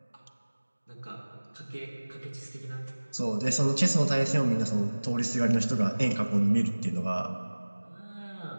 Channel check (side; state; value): both; inverted; correlation -1.00